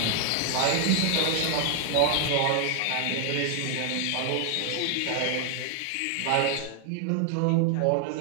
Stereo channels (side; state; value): both; different; correlation 0.00